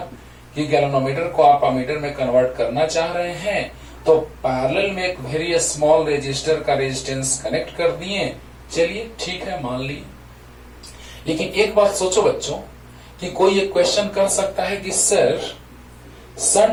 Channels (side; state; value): both; identical; correlation 1.00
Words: कि गैल्वेनोमीटर को आप अमीटर में कन्वर्ट करना चाह रहे हैं, तो पैरेलल में एक वेरी स्मॉल रेजिस्टर का रेजिस्टेंस कनेक्ट कर दिए। चलिए ठीक है, मान लिए। लेकिन एक बात सोचो बच्चों कि कोई एक क्वेश्चन कर सकता है कि सर